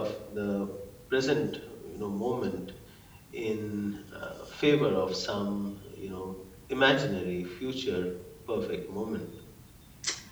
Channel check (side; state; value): both; identical; correlation 1.00